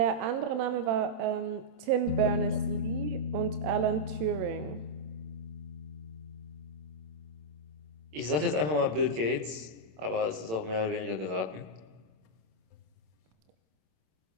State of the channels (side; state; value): left; late; 27 ms